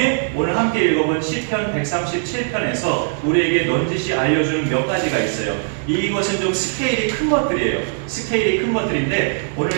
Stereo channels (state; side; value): silent; left; digital silence